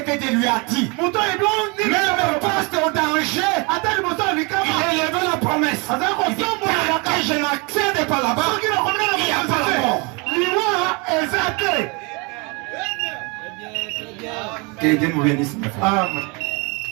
Dieu lui a dit. Même poste au danger, il a élevé la promesse. Il dit, tant que je n'accède pas là-bas, il n'y a pas la mort. Que Dieu nous bénisse, mes frères.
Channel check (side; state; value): left; quieter; 30.0 dB